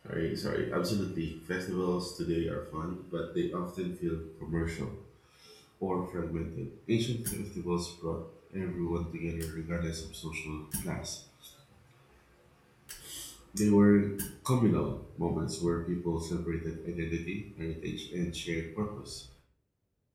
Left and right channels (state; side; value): identical; both; correlation 1.00